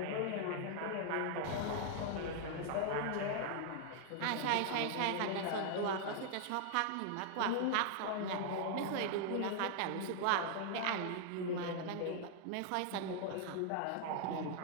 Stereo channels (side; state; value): both; different; correlation 0.00